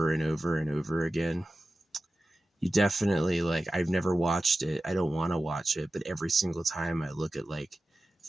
and over and over again. You definitely like, I've never watched it. I don't want to watch it, but every single time I look at like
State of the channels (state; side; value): normal; both; correlation 0.94